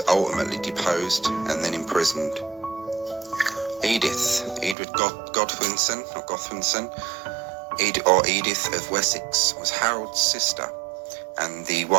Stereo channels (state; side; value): drops out; left; at 4.8 s